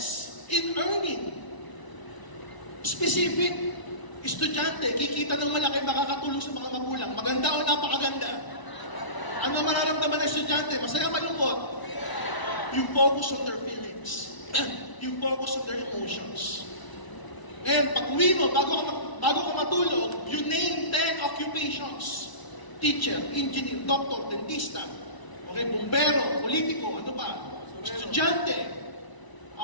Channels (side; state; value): right; late; 1.0 ms